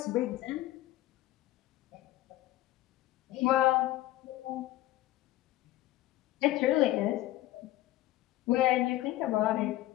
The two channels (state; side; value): quieter; right; 15.7 dB